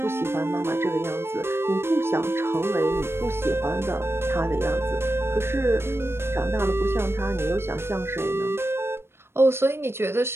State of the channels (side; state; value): left; late; 0.12 ms